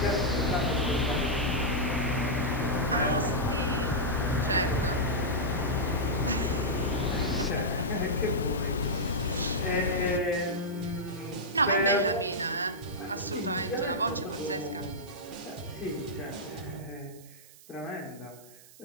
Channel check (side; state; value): right; noise; hiss, 22 dB below the sound